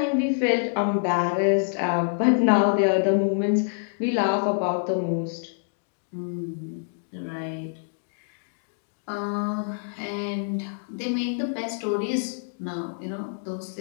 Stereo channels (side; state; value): right; silent; digital silence